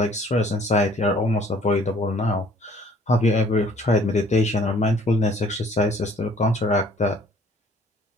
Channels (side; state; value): both; normal; correlation 0.57